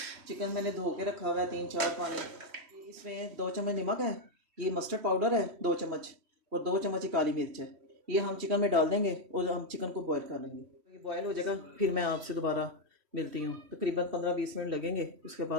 चिकन मैंने धो के रखा हुआ है 3-4 पानी। इसमें 2 चम्मच नमक है, ये मस्टर्ड पाउडर है 2 चम्मच और 2 चम्मच काली मिर्च है। ये हम चिकन में डाल देंगे और हम चिकन को बॉयल कर लेंगे। ये बॉयल हो जाएगा फिर मैं आपसे दोबारा मिलती हूँ। तकरीबन 15-20 मिनट लगेंगे, उसके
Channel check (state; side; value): late; left; 3.1 ms